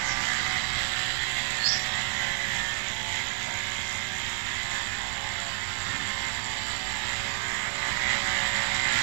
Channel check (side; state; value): left; silent; 58 dB below the other